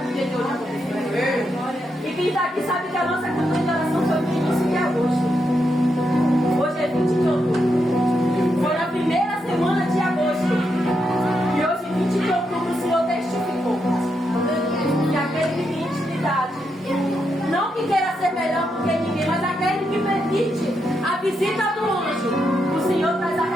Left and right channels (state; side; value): normal; both; correlation 0.82